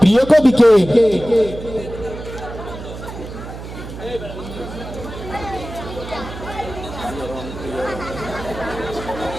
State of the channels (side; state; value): right; noise; hum, 11 dB below the sound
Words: প্রিয় কবি কে?